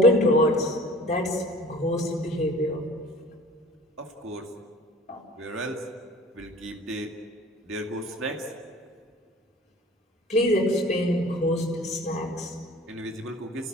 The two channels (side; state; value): both; normal; correlation 0.46